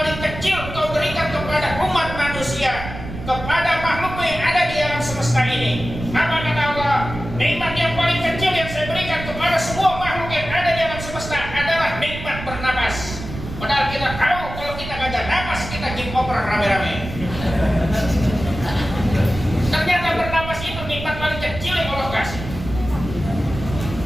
kecil Engkau berikan kepada umat manusia, kepada makhluk yang ada di alam semesta ini? Apa kata Allah? Nikmat yang paling kecil yang saya berikan kepada semua makhluk yang ada di alam semesta adalah nikmat bernapas. Padahal kita tahu kalau kita gak ada napas, kita game over rame-rame. Ternyata bernapas itu nikmat paling kecil yang Allah kasih.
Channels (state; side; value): noise; right; rumble, 9 dB below the sound